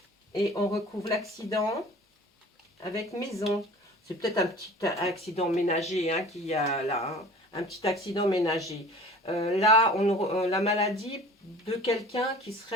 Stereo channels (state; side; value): normal; both; correlation 0.44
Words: Et on recouvre l'accident avec maison. C'est peut-être un petit accident ménager hein, qu'il y a là. Hein, un petit accident ménager. Là, la maladie de quelqu'un qui